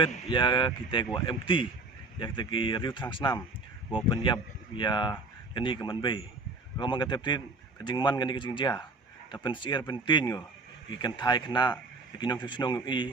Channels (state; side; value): quieter; left; 3.4 dB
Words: ya kita gua empty ya kita ki riu transnam gua penyap ya kani ke man bay ko man ka teptin kajing man kani kajing ja ta pen sier pen tin ngo ikan thai khna kinong chnong